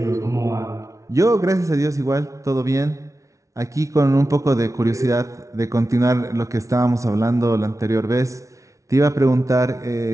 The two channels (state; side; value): late; left; 0.15 ms